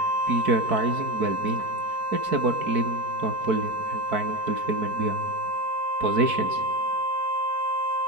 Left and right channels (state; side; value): late; left; 4.6 ms